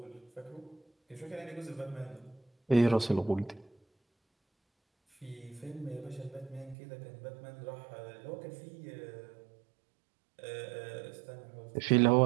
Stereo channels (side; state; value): left; drops out; at 6.8 s